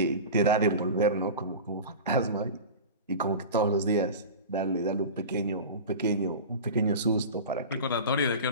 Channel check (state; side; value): inverted; both; correlation -0.31